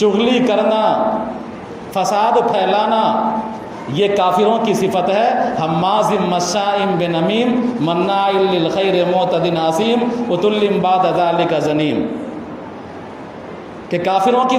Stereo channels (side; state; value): both; identical; correlation 1.00